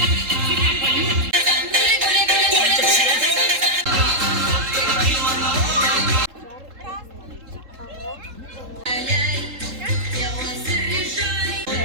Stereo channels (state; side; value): late; left; 3.7 ms